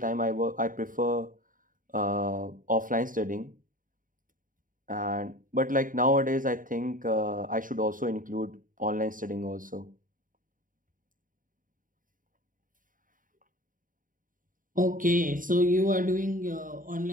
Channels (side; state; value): left; late; 0.39 ms